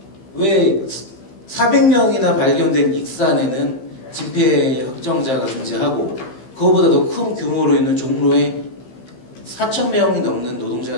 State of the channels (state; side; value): late; right; 15 ms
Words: 왜 400명이나 발견된 익산에는 진폐 확정자가 존재하고 그거보다 더 큰 규모로 있는 종로에 4,000명이 넘는